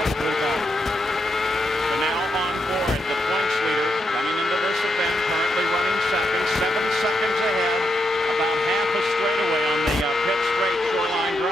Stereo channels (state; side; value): normal; both; correlation 0.82